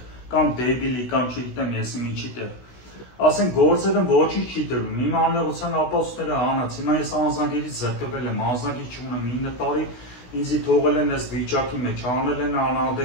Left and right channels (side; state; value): right; late; 16 ms